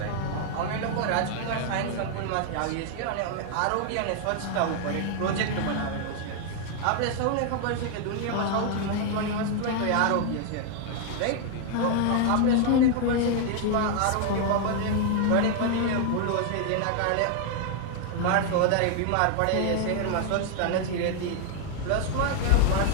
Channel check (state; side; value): different; both; correlation 0.00